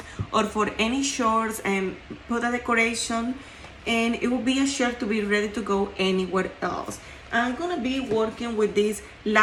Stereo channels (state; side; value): identical; both; correlation 1.00